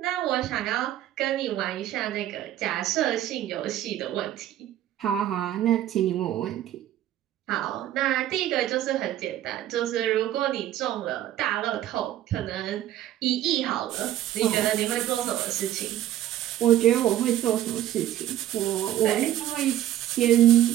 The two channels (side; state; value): left; quieter; 12.6 dB